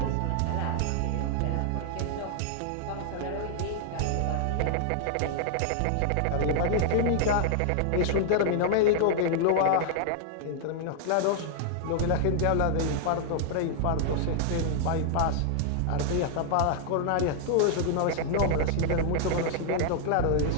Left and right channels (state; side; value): different; both; correlation -0.01